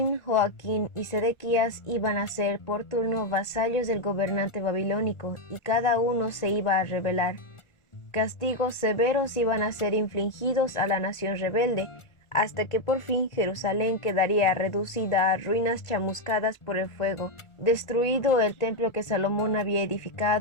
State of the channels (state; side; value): late; right; 1.4 ms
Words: Joaquín y Sedequías iban a ser por turno vasallos del gobernante babilónico y cada uno se iba a rebelar. Castigos severos iban a ser infligidos a la nación rebelde, hasta que por fin Jerusalén quedaría reducida a ruinas chamuscadas por el fuego, destruido el templo que Salomón había